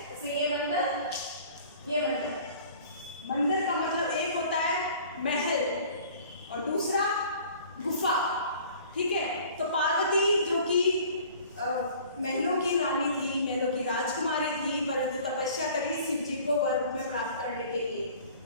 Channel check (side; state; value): both; inverted; correlation -0.49